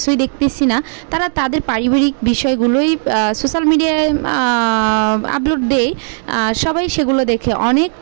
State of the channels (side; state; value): left; silent; digital silence